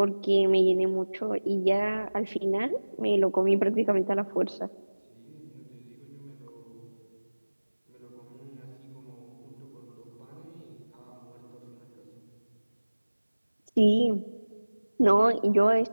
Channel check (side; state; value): both; inverted; correlation -1.00